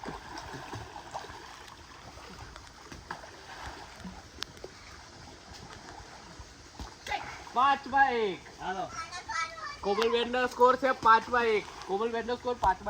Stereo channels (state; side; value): identical; both; correlation 1.00